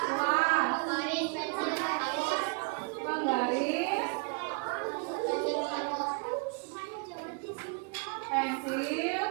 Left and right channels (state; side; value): quieter; left; 33.5 dB